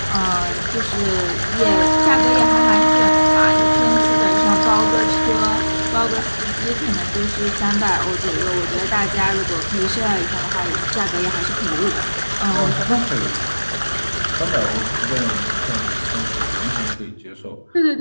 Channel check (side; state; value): both; inverted; correlation -1.00